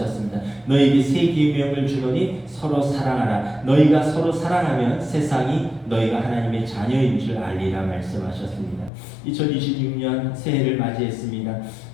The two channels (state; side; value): drops out; right; at 8.9 s